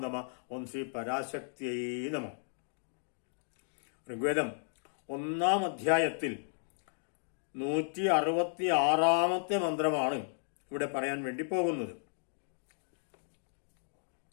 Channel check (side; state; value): right; silent; digital silence